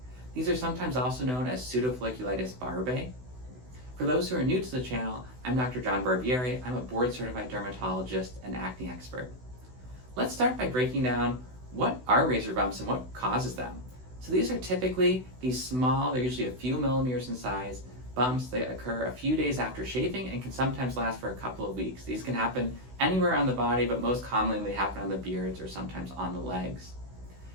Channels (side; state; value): left; late; 16 ms